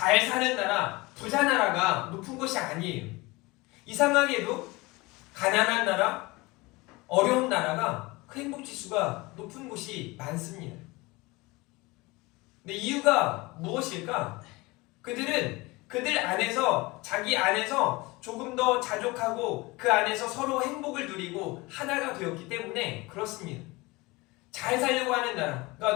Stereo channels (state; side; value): quieter; right; 23.1 dB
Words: 사는 나라, 부자 나라가 높은 것이 아니에요. 이상하게도 가난한 나라, 어려운 나라가 그 행복지수가 높은 곳이 많습니다. 근데 이유가 무엇일까? 그들 안에서 자기 안에서 조금 더 자족하고 그 안에서 서로 행복을 누리고 하나가 되었기 때문에 그렇습니다. 잘 살려고 하는 나라.